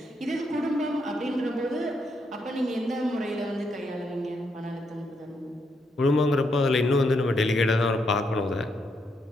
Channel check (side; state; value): both; normal; correlation 0.78